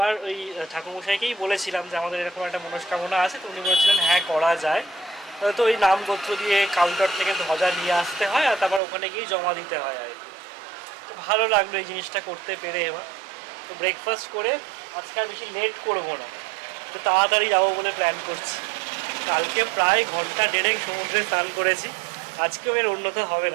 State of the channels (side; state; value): left; drops out; at 8.8 s